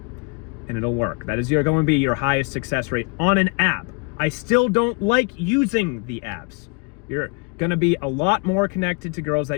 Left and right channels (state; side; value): quieter; right; 33.1 dB